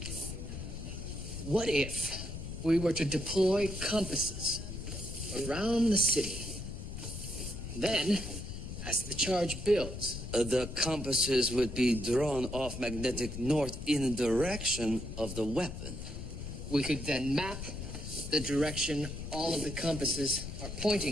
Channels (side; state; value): left; noise; rumble, 8 dB below the sound